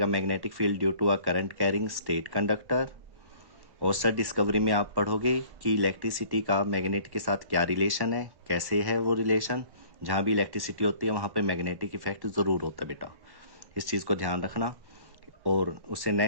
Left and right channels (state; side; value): late; left; 1.1 ms